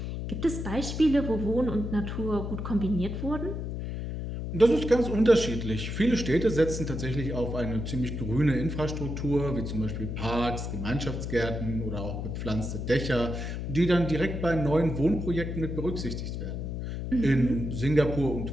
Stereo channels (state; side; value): noise; left; hum, 5 dB below the sound